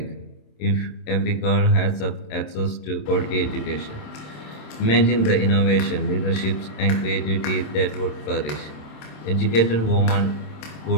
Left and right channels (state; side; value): late; right; 26 ms